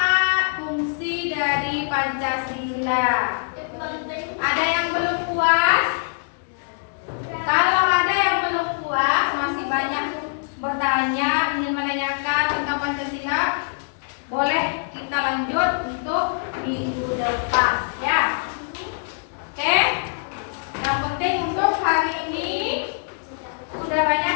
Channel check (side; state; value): right; silent; digital silence